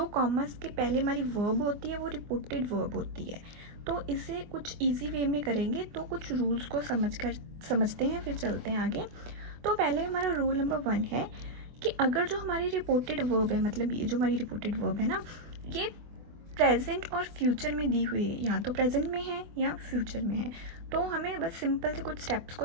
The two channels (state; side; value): late; left; 24 ms